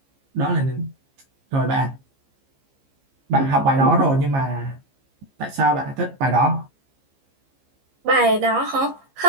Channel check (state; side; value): late; left; 15 ms